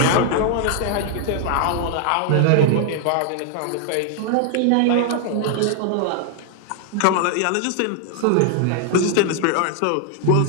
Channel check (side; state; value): both; different; correlation 0.00